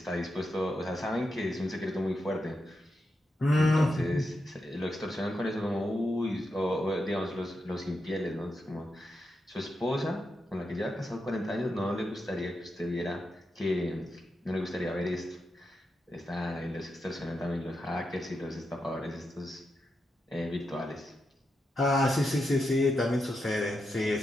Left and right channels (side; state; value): both; normal; correlation 0.86